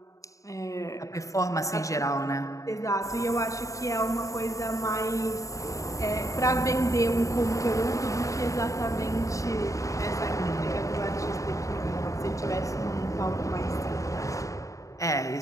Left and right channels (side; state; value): right; late; 0.16 ms